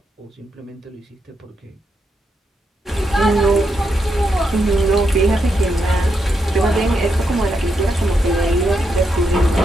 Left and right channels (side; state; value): both; normal; correlation 0.82